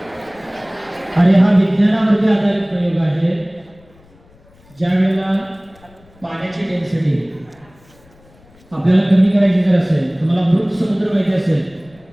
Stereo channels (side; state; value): left; noise; rumble, 28 dB below the sound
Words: आणि हा विज्ञानावरती आधारित प्रयोग आहे. ज्यावेळेला पाण्याची डेन्सिटी आपल्याला कमी करायची जर असेल, तुम्हाला मृत समुद्र माहिती असेल,